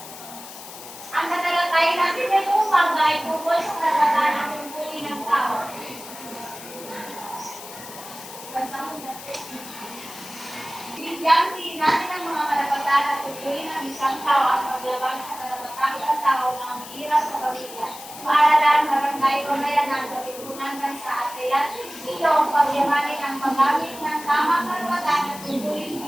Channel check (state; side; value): noise; left; hiss, 14 dB below the sound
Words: Ang tatalakayin natin ngayong umaga ay tungkol sa karapatan ng tungkulin ng tao. Bigyan din natin ang mga karapatan at tungkulin ng isang tao at paglabag sa karapatan ng tao na umiirap sa pamilya. Paaralan, barangay, pamayanan, pagkukunan bansa at kaya ito ang pagyamanin ang paggamit ng tamang karapatan at tungkulin